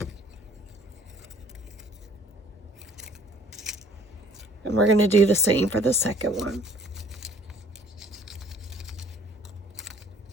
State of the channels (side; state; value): both; normal; correlation 0.56